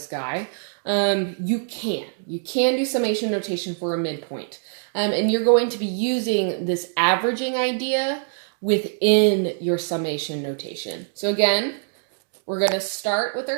guy, you can do summation notation for a midpoint. And you're going to be using this averaging idea within your summation notation. So again, we're going to start with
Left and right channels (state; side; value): silent; left; digital silence